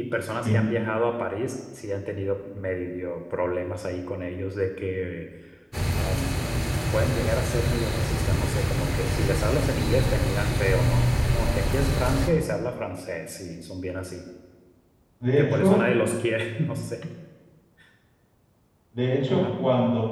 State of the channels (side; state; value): both; identical; correlation 1.00